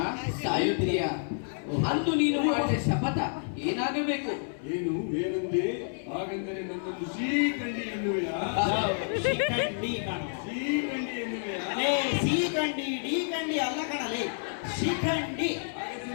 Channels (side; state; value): right; silent; 58 dB below the other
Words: ಸಾಯುತ್ತೀಯ. ಅಂದು ನೀನು ಮಾಡಿದ ಶಪಥ ಏನಾಗಬೇಕು? ಏನು ಏನಂದೆ? ಹಾಗೆಂದರೆ ನನ್ನನ್ನು ಶ್ರೀಕಂಡಿ ಎನ್ನುವೆಯಾ? ಶಿಖಂಡಿ ಕಣ. ಶ್ರೀಕಂಡಿ ಎನ್ನುವೆಯಾ? ಸಿಖಂಡಿ ಡಿ ಕಂಡಿ ಅಲ್ಲ ಕಣಲೇ, ಶಿಖಂಡಿ.